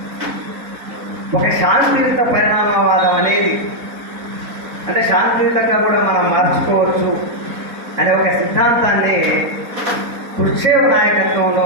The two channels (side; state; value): left; late; 4.1 ms